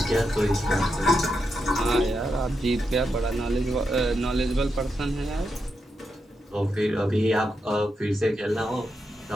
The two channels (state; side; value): normal; both; correlation 0.85